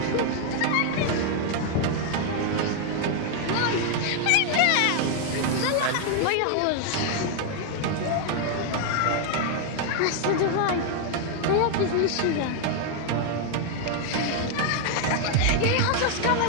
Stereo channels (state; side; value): different; both; correlation 0.00